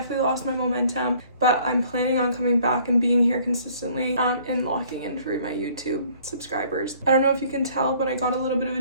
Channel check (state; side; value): inverted; both; correlation -0.58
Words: lost my momentum, but I'm planning on coming back and being here consistently and locking in for my YouTube subscribers. I don't know if you can tell, but I got a little bit of a